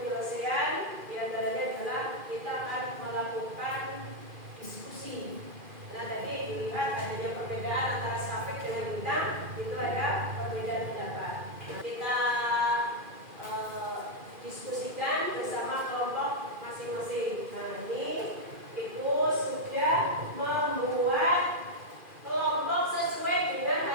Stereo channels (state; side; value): late; left; 2.4 ms